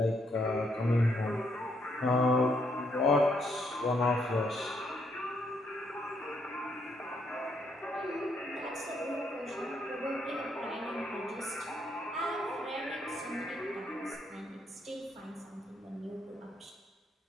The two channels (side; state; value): both; normal; correlation 0.74